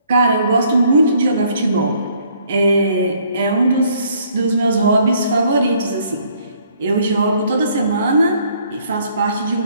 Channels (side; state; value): both; inverted; correlation -0.64